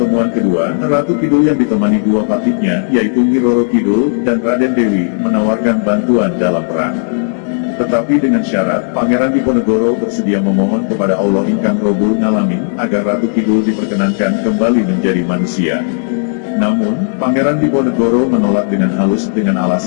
kedua, Ratu Kidul yang ditemani dua patihnya, yaitu Nyi Roro Kidul dan Raden Dewi, menawarkan bantuan dalam perang. Tetapi dengan syarat, Pangeran Diponegoro bersedia memohon kepada Allah Ingkang Robul Ngalamin, agar Ratu Kidul diperkenankan kembali menjadi manusia. Namun, Pangeran Diponegoro menolak dengan halus dengan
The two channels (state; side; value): silent; right; 71 dB below the other